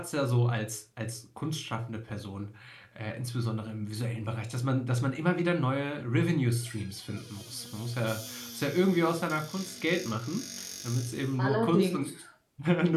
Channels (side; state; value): both; identical; correlation 1.00